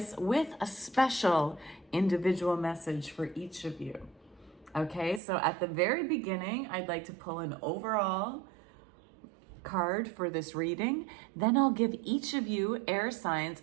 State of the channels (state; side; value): drops out; left; at 5.2 s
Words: with a special individual message for each of you. Okay, so at the very beginning, I'd like to pull an overall card for this reading. Then I'll give each of you air signs